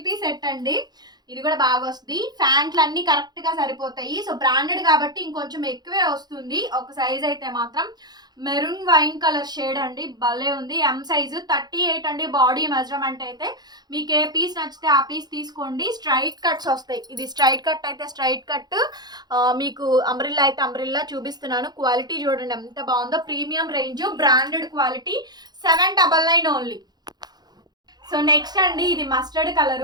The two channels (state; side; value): late; left; 0.20 ms